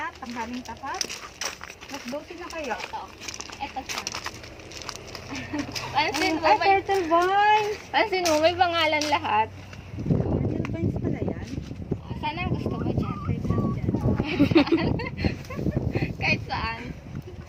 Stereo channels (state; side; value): identical; both; correlation 1.00